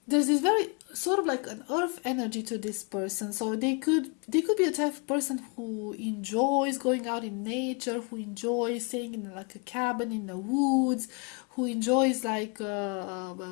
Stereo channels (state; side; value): quieter; right; 32.8 dB